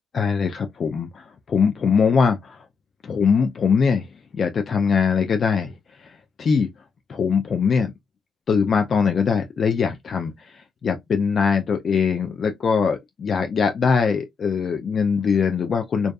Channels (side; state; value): right; quieter; 5.6 dB